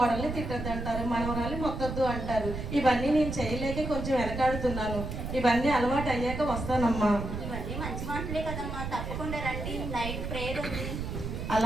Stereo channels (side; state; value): right; noise; rumble, 5 dB below the sound